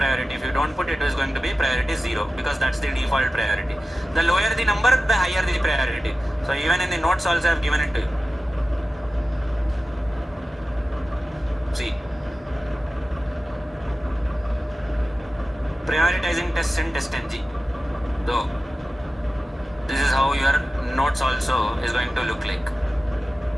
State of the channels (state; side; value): normal; both; correlation 0.94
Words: If you don't put it, it is going to be priority 0, because that's the default priority. The lower the number, the higher the priority. So even in the notes also I have given it to you. See, prioritizing tests in testng. So this is how your notes also is going to look like.